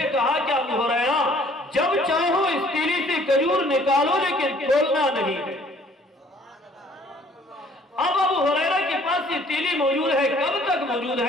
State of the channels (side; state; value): both; normal; correlation 0.58